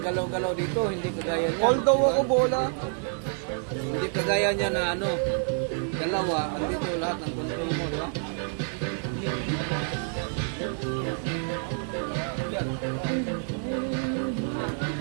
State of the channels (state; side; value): silent; left; 59 dB below the other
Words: dito, hindi kagaya niya. Hold daw ako bola. Hindi kagaya niya na dalawa, andito lahat ng control mo, di ba?